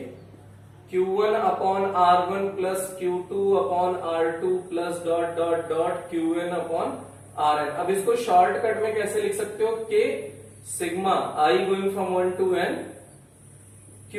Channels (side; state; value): both; identical; correlation 1.00